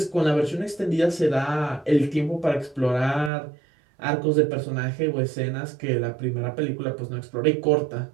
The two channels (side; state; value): left; drops out; at 3.3 s